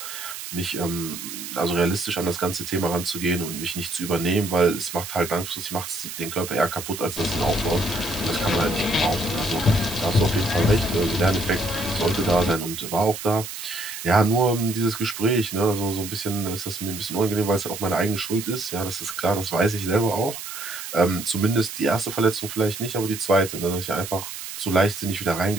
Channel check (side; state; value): right; noise; hiss, 9 dB below the sound